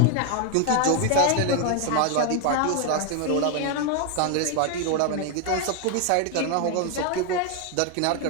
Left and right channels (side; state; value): both; different; correlation 0.01